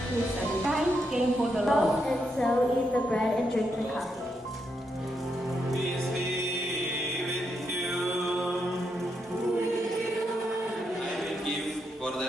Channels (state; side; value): normal; both; correlation 0.81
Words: through 7. Christ came for the law. And so eat the bread and drink the cup. Peace be with you. I will give, for the